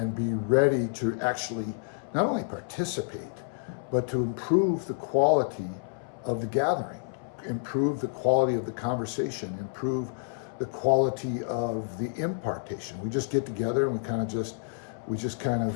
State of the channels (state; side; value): silent; right; 59 dB below the other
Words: be ready to actually not only participate, but to improve the quality of the gathering, improve the quality of the conversation, improve the quality of the impartation. We just get together and we just kind